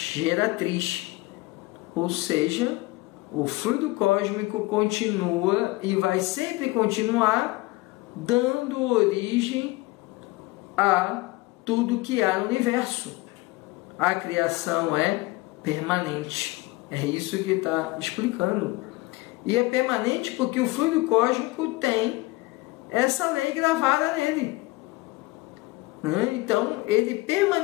ou seja, o fluido cósmico continua e vai sempre continuar dando origem a tudo que há no universo. A criação é permanente. É isso que ele está explicando. E é permanente porque o fluido cósmico tem essa lei gravada nele. Então, ele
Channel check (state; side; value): quieter; right; 21.3 dB